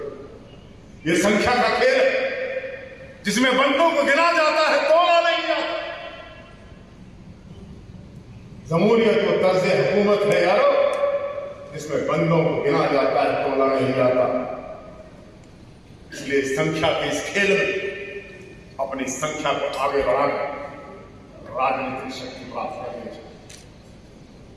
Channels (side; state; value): both; identical; correlation 1.00